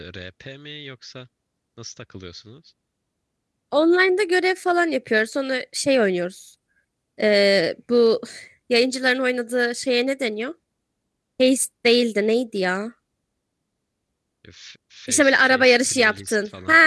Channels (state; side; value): identical; both; correlation 1.00